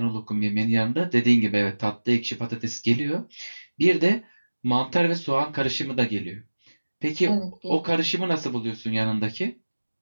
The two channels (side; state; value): both; inverted; correlation -1.00